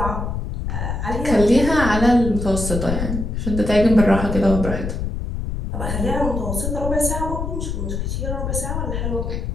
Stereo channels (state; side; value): noise; left; rumble, 3 dB below the sound